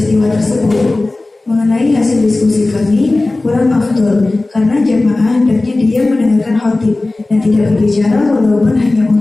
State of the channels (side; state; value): right; quieter; 3.0 dB